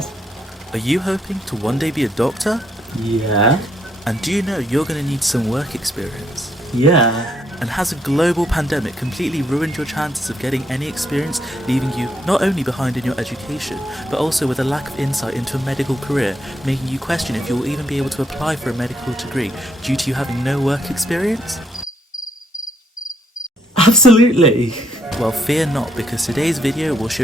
Are you hoping to one day be a doctor? Yeah. And do you know you're going to need some work experience? Yeah. And has a global pandemic completely ruined your chances of getting any experience, leaving you not only behind in your education, but also with a lack of insight into a medical career, making you question if you will even be able to apply for a medical degree due to you having no work experience? Absolutely. Well, fear not, because today's video will show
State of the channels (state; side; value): normal; both; correlation 0.73